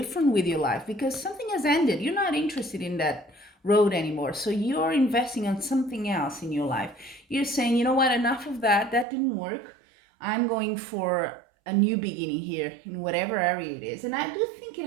with your life because something has ended. You're not interested in that road anymore. So you're investing on something else in your life. You're saying, you know what, enough of that. That didn't work. I'm going for a new beginning here in whatever area it is. And I do think it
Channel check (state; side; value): drops out; left; at 9.1 s